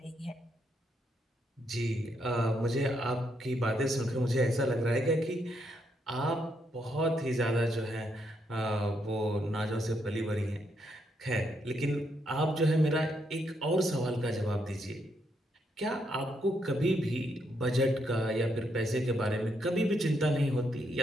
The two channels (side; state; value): both; normal; correlation 0.77